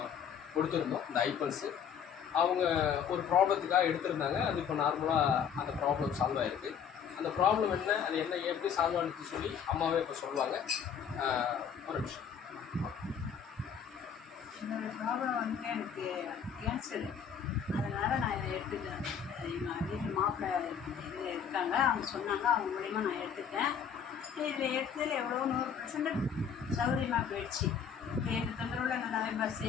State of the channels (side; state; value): right; quieter; 7.6 dB